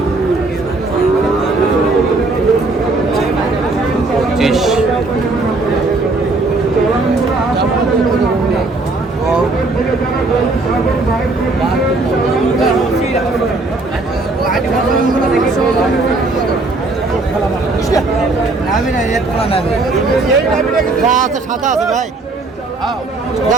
সাদা আছে ভাই।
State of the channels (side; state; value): left; quieter; 3.3 dB